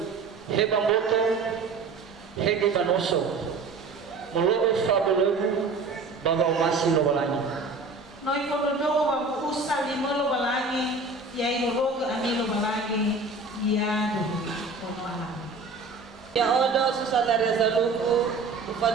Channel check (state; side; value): quieter; left; 3.9 dB